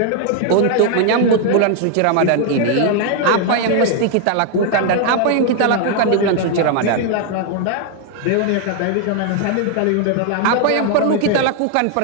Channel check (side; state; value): both; different; correlation 0.00